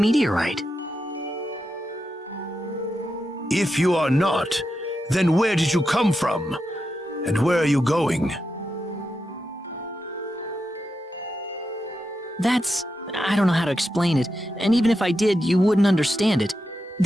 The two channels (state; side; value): normal; both; correlation 0.87